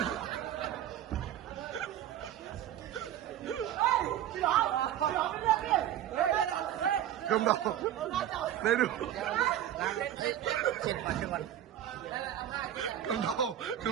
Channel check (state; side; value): quieter; left; 11.4 dB